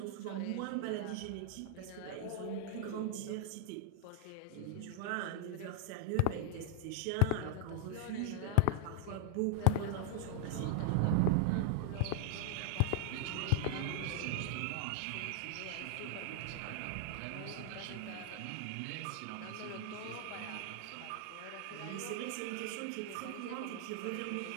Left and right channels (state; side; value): different; both; correlation 0.00